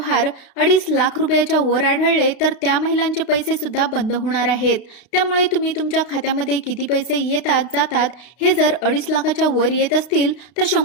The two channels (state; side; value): late; right; 32 ms